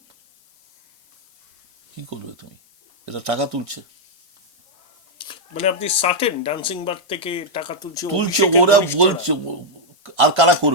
কি করবে তুমি? এটা টাকা তুলছে, মানে আপনি সার্টেন ডান্সিং বার থেকে টাকা তুলছে, ওরা বলছে। আর কারা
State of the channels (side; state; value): both; normal; correlation -0.02